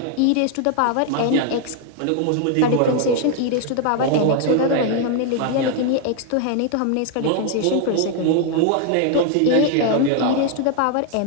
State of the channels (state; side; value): different; both; correlation 0.00